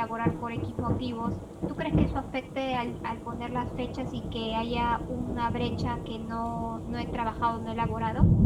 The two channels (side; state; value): both; identical; correlation 1.00